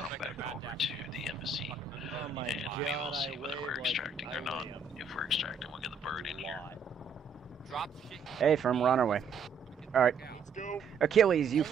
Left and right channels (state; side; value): quieter; left; 5.0 dB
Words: back over to the embassy, and we will see whether we're extracting or not. If we're extracting, we'll get the bird in here. Hey, firm, we're on our way. Alright. Let's go. Achilles, you